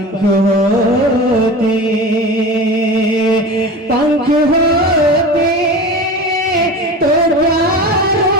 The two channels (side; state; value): both; normal; correlation 0.32